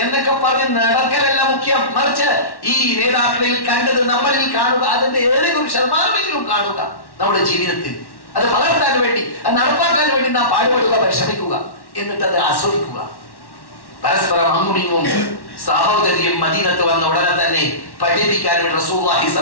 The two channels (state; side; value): late; right; 1.1 ms